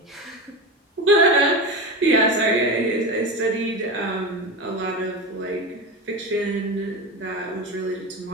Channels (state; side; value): normal; both; correlation 0.22